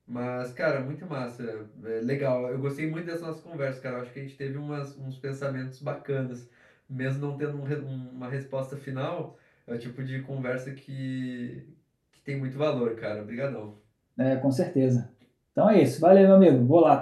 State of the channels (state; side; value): identical; both; correlation 1.00